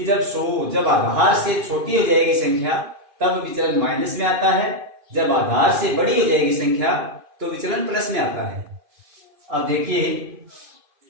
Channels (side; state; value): left; late; 2.5 ms